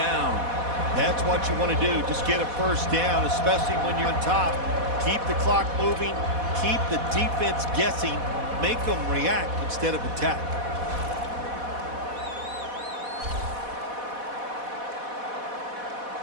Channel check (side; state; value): left; late; 4.1 ms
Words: That's what you want to do. Just get a first down, especially when you're on top. Keep the clock moving. Keep the defense guessing. Make them react instead of attack.